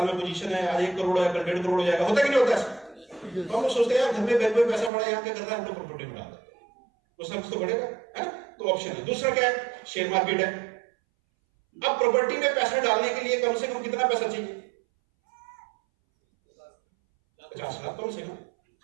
में पोजीशन है, आज 1 करोड़ है, कल 1.5 करोड़ हो जाएगा। होता है कि नहीं होता है? तो हम लोग सोचते हैं यार घर में बैंक में पैसा पड़ा है, यहाँ क्या कर रहा है, हम लोग प्रॉपर्टी में डाल देते हैं, कुछ ना कुछ तो बढ़ेगा, है ना? तो ऑप्शन है। दूसरा क्या है? शेयर मार्केट है। अब प्रॉपर्टी में पैसा डालने के लिए कम से कम कितना पैसा चाहिए? 50 लाख कम से कम,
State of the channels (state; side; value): drops out; left; at 4.9 s